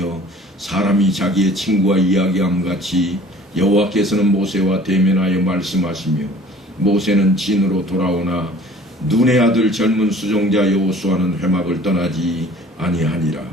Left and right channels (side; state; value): both; normal; correlation 0.49